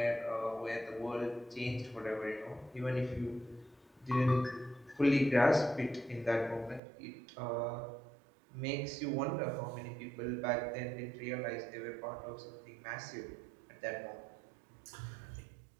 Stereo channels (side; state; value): left; drops out; at 6.8 s